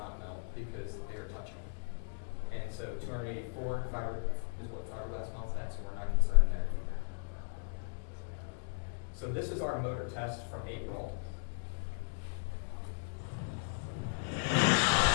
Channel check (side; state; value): right; silent; digital silence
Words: melt because they are touching. And so 284 is what fiberglass melts at, so we're not concerned there either. So this is our motor test from April.